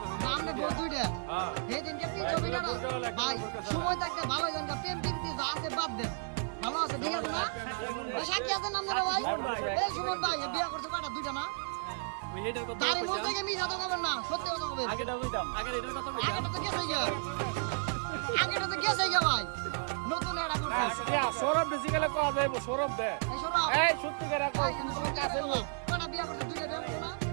নামে বউ 2টা। সেদিনকে 300 ফিট ভাই সময় থাকতে ভালো জান প্রেম প্রীতি যা আছে বাদ দেন, ভালো আছে ঠিক আছে না? ওই সাক্ষী আছেন আপনারা ভাই? এই সুমন ভাই এ বিয়া করছে কয়টা? 2টা না? দাড়ি মুছ থেকে মিছা তো করবেন না, সত্যি কথা বলবেন। আগেটা তো গেছে গিয়া। আগেটা তো গেছে গিয়া ভাই, নতুন এটা করছে। সৌরভ বেসিক্যালি কোয়া যাইব, সৌরভ দে। এই সৌরভ, এই সত্যি করে ভাই আমি সত্যি কথা বলবো। কয়টা বিয়া করছে? 2টা বিয়া করছে না?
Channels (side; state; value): left; silent; digital silence